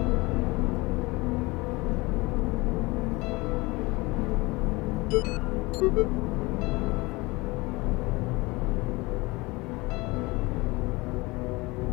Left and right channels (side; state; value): right; quieter; 23.5 dB